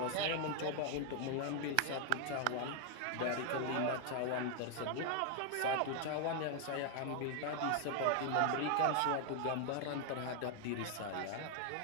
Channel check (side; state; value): both; different; correlation 0.00